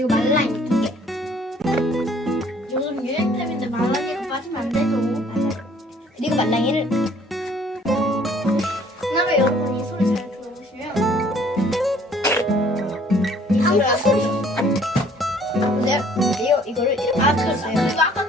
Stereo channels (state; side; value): normal; both; correlation 0.58